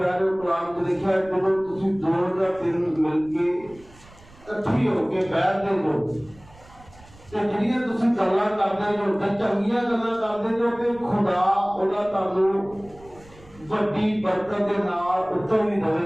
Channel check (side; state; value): right; noise; rumble, 24 dB below the sound